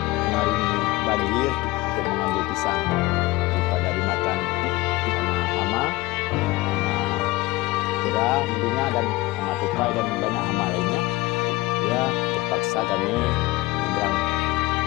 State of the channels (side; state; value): right; quieter; 20.3 dB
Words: mengarungi banjir untuk mengambil pisang daripada dimakan sama hama kera tentunya, dan hama tupai dan banyak hama lainnya. Ya, terpaksa kami menyeberang